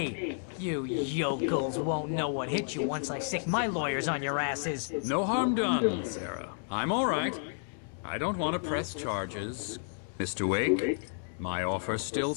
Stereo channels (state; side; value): silent; right; 57 dB below the other